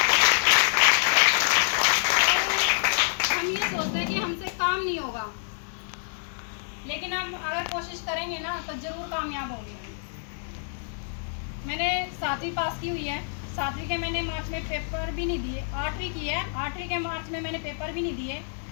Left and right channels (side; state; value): right; silent; 58 dB below the other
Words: हम ये सोचते हैं कि हमसे काम नहीं होगा, लेकिन हम अगर कोशिश करेंगे ना तो जरूर कामयाब होंगे। मैंने 7वीं पास की हुई है, 7वीं के मैंने मार्च में पेपर भी नहीं दिए, 8वीं की है, 8वीं के मार्च में मैंने पेपर भी नहीं दिए।